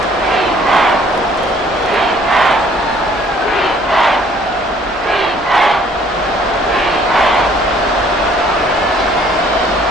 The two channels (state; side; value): normal; both; correlation 0.59